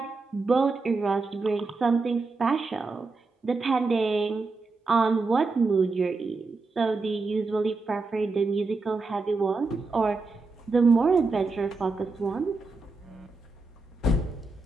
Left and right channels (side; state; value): left; quieter; 3.7 dB